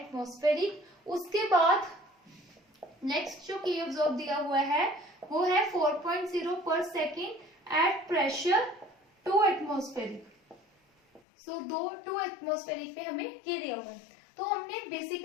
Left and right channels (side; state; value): right; drops out; at 11.2 s